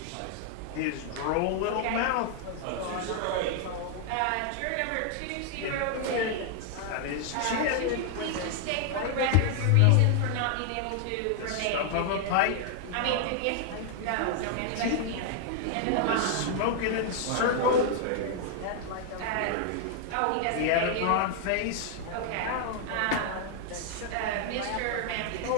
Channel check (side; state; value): both; different; correlation 0.00